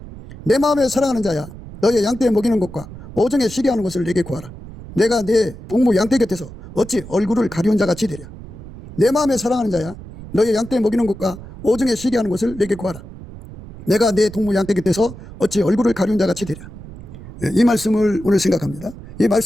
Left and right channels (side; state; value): right; noise; rumble, 15 dB below the sound